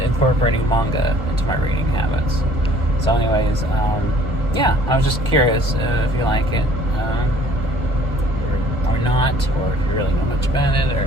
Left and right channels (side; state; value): both; normal; correlation 0.55